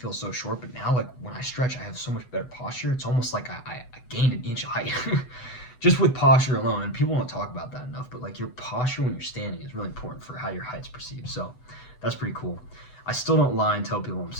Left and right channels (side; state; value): right; late; 8.0 ms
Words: so short, but now, like, when I stretch, I have so much better posture. It's almost like I gained an inch of height just with posture alone. And people don't talk about that enough, but like your posture when you're standing is really important for how your height's perceived. So that's pretty cool. I still don't lie and tell people I'm